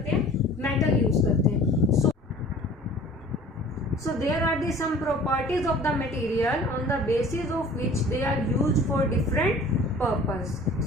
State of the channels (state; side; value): normal; both; correlation 0.47